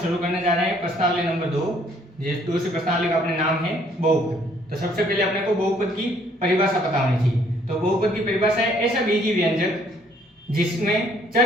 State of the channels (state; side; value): normal; both; correlation 0.64